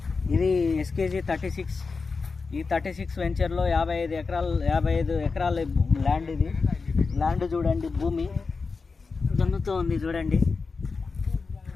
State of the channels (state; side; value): quieter; right; 4.5 dB